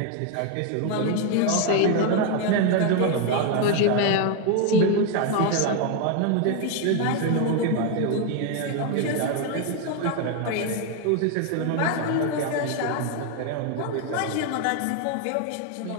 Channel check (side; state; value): both; different; correlation 0.01